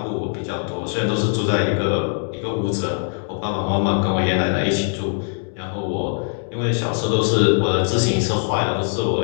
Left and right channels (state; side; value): silent; right; digital silence